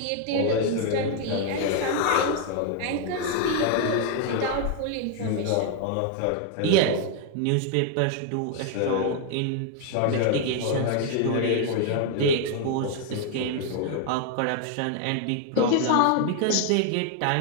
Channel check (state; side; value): different; both; correlation 0.01